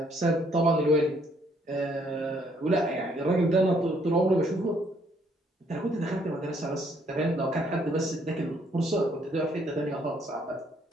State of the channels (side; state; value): both; normal; correlation 0.67